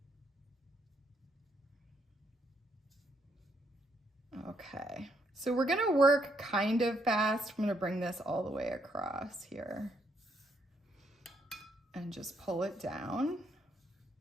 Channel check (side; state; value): both; normal; correlation 0.74